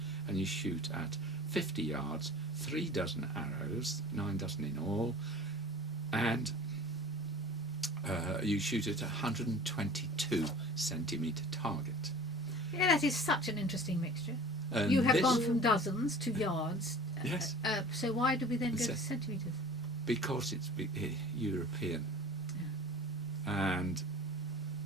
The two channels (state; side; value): normal; both; correlation 0.42